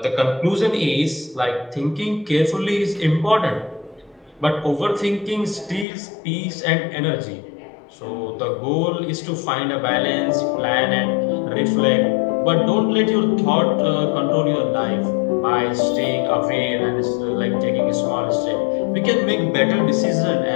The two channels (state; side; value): drops out; right; at 5.9 s